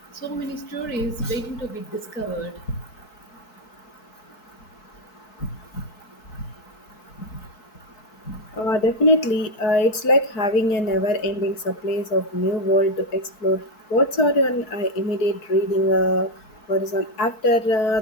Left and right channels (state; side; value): late; right; 4.6 ms